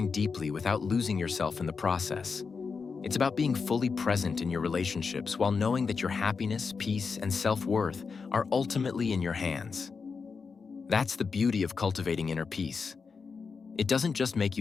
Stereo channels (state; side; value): quieter; right; 5.2 dB